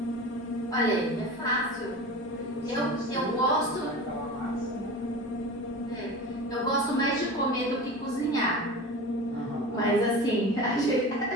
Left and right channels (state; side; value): normal; both; correlation 0.33